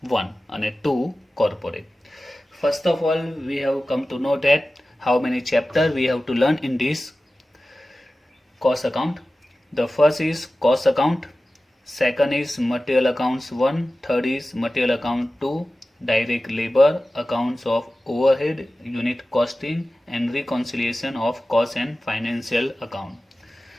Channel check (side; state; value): both; normal; correlation 0.95